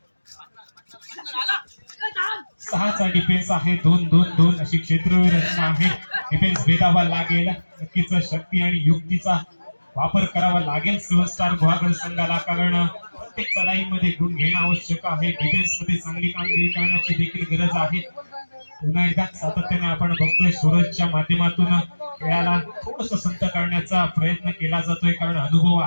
6चा डिफेन्स आहे. 2-2-2 अशी क्षेत्रवीर रचना आहे. डिफेन्स भेदावा लागेल. नक्कीच शक्ती आणि युक्तीचा वापर करावा लागेल सेव्हन स्टार गुहागर संघाला. कारण प्रत्येक चढाईमध्ये गुण घेणं आवश्यक आहे. डिफेन्स मध्ये चांगली कामगिरी करण्याची देखील गरज आहे. पुन्हा एकदा सातत्याने आपण बघतोय सूरजच्या माध्यमातून खेळाला थोडस संत करण्याचा प्रयत्न केला जातोय. कारण अनुभव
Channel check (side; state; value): both; inverted; correlation -1.00